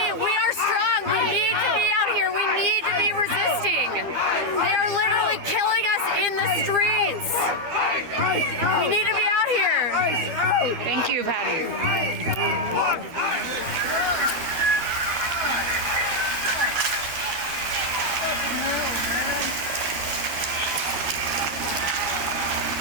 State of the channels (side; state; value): left; late; 12 ms